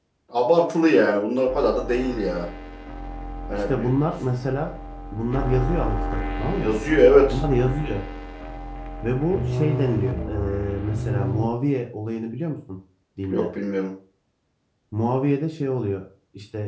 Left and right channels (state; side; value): identical; both; correlation 1.00